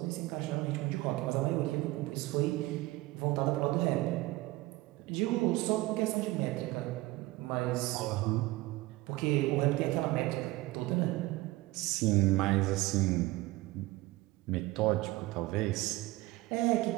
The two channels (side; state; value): left; quieter; 19.4 dB